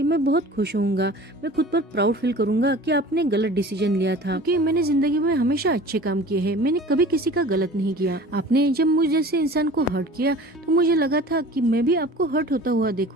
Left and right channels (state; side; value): normal; both; correlation 0.42